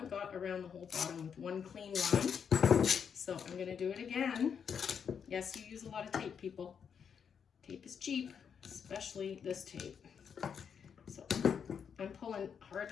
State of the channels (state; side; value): quieter; right; 7.1 dB